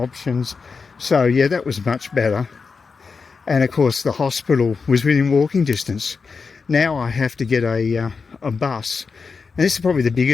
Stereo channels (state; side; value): quieter; right; 5.0 dB